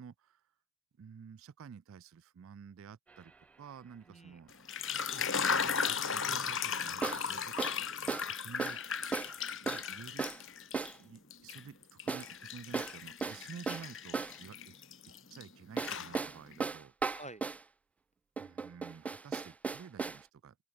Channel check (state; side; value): normal; both; correlation 0.44